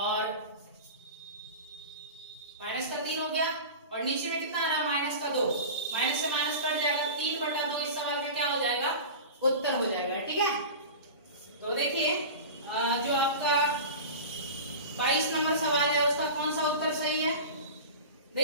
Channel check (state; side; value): inverted; both; correlation -0.31